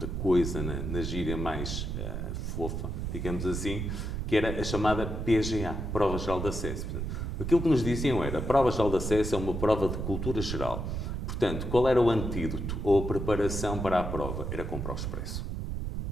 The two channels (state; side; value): noise; right; rumble, 3 dB below the sound